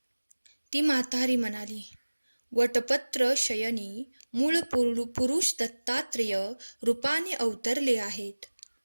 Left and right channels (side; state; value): both; inverted; correlation -1.00